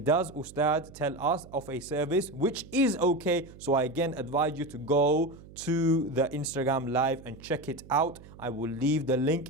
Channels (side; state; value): right; noise; hum, 19 dB below the sound